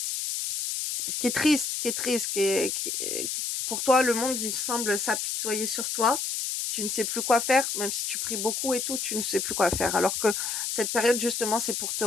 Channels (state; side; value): noise; left; hiss, 2 dB below the sound